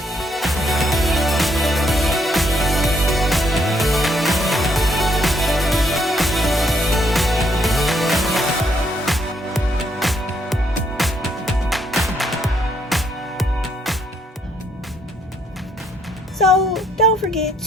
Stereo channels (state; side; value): normal; both; correlation 0.71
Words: so don't forget